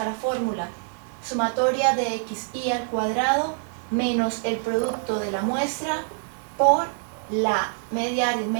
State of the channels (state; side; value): silent; left; 62 dB below the other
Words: a la fórmula sumatoria de xy al cuadrado menos el producto de la muestra por la media